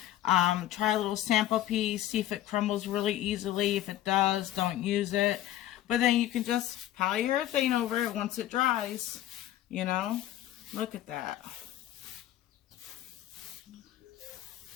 Try a little sample piece, see if it crumbles really easily. If it does, don't use it. But then you can just polyurethane over it once it dries, you know. Look at that.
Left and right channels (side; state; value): right; quieter; 13.4 dB